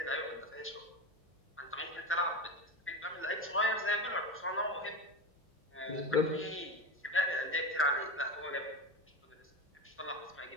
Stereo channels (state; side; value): normal; both; correlation 0.22